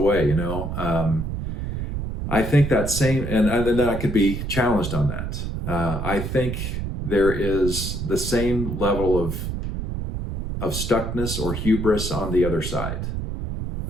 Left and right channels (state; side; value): noise; right; rumble, 4 dB below the sound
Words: I think that same, and then I could be challenged on that. I think there is the same level of stuckness or hubris on the other side,